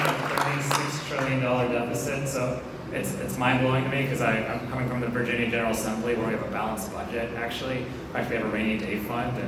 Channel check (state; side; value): identical; both; correlation 1.00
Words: a $36 trillion deficit, so it's mind-blowing to me because I'm coming from the Virginia General Assembly where we have a balanced budget, actually. In fact, we have a rainy day fund,